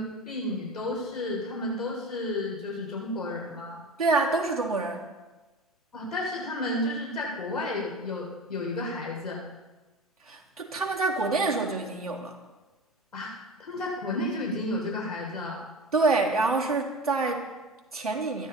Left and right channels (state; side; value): normal; both; correlation 0.32